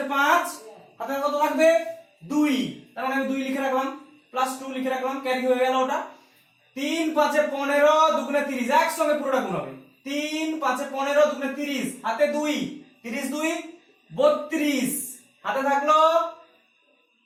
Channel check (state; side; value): identical; both; correlation 1.00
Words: 5, হাতে কত থাকবে? 2, তার মানে আমি 2 লিখে রাখলাম, +2 লিখে রাখলাম, ক্যারি হয়ে গেল ওটা। 3 5 এ 15, দুগুণে 30, একসঙ্গে পুরোটা গুণ হবে। 3 5 এ 15, দুগুণে 30, হাতে 2, 30 2 32, হাতে থাকলো